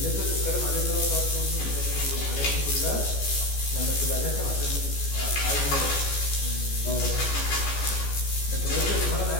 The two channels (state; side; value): late; right; 14 ms